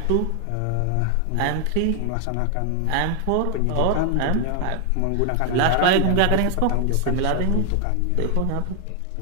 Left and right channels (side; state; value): both; different; correlation 0.00